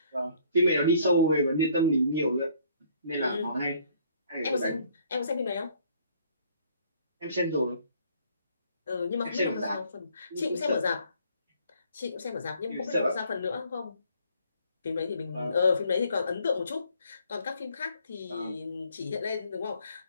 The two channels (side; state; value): both; inverted; correlation -0.62